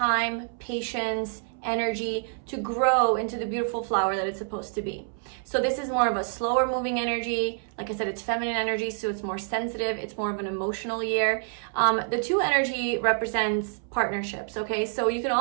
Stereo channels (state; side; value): silent; left; 60 dB below the other